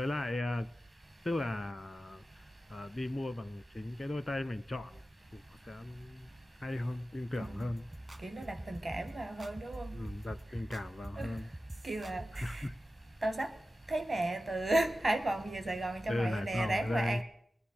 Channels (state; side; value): normal; both; correlation 0.94